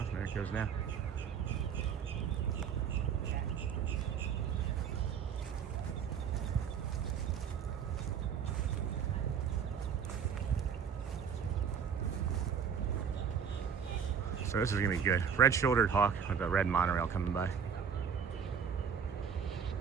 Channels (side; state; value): left; quieter; 7.2 dB